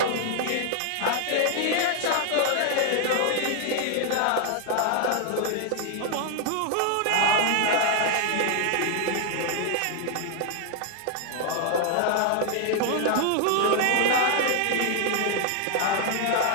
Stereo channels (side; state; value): both; different; correlation 0.00